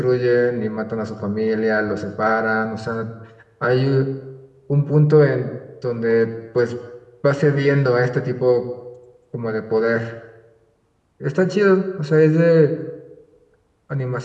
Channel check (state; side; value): identical; both; correlation 1.00